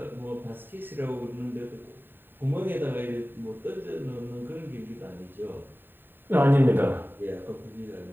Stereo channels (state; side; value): late; left; 0.095 ms